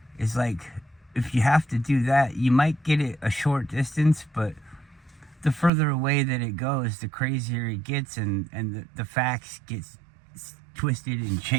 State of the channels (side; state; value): left; drops out; at 5.7 s